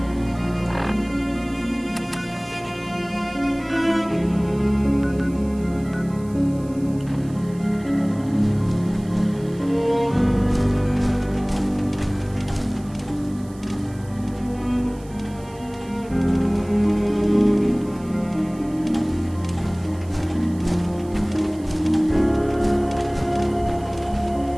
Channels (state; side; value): noise; right; hiss, 25 dB below the sound